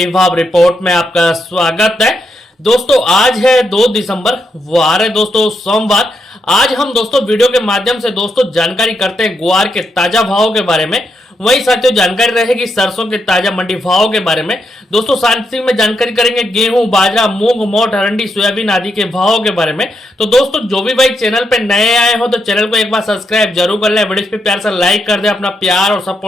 भाव रिपोर्ट में आपका स्वागत है। दोस्तों आज है 2 दिसंबर, वार है दोस्तों सोमवार। आज हम दोस्तों वीडियो के माध्यम से दोस्तों जानकारी करते हैं ग्वार के ताजा भावों के बारे में। वही साथियों जानकारी रहेगी सरसों के ताजा मंडी भावों के बारे में। दोस्तों साथ में जानकारी करेंगे गेहूं, बाजरा, मूंग, मोठ, अरंडी, सोयाबीन आदि के भावों के बारे में। तो दोस्तों जो भी भाई चैनल पे नए आए हो तो चैनल को एक बार सब्सक्राइब जरूर कर ले, वीडियो पे प्यार से लाइक कर दे, अपना प्यार और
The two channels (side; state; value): both; normal; correlation 0.81